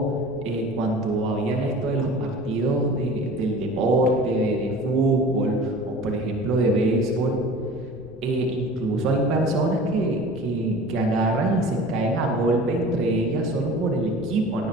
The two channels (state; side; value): noise; left; rumble, 21 dB below the sound